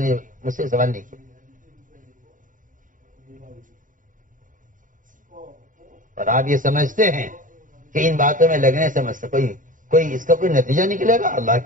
مجھ سے سوال نہیں کیا، اور آپ یہ سمجھتے ہیں کہ ان باتوں میں لگنے سے کوئی اس کا کوئی نتیجہ نکلے گا؟ اللہ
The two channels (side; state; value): left; late; 0.38 ms